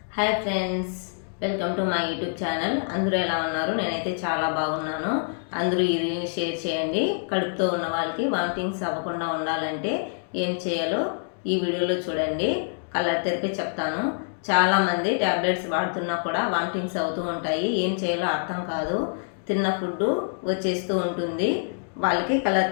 Hi friends, welcome to my YouTube channel. అందరూ ఎలా ఉన్నారు? నేనైతే చాలా బాగున్నాను. అందరూ ఈ రీల్ని షేర్ చేయండి. కడుపుతో ఉన్న వాళ్ళకి వామిటింగ్స్ అవ్వకుండా ఉండాలంటే ఏం చేయాలో ఈ వీడియోలో చూడండి. కలర్ తెరిపి చెప్తాను. చాలామంది ట్యాబ్లెట్స్ వాడుతున్నా కూడా వామిటింగ్స్ అవుతూ ఉంటాయి. ఏం చేయాలో అర్థం కాదు. తిన్న ఫుడ్ వచ్చేస్తూ ఉంటుంది. వాళ్ళకి కలర్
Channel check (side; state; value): right; silent; digital silence